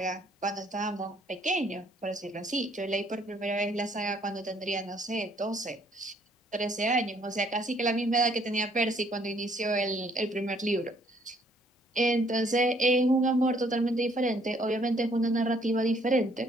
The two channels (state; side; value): normal; both; correlation 0.64